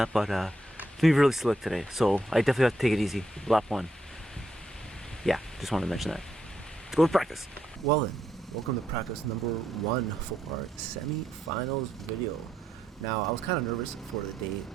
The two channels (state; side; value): normal; both; correlation 0.79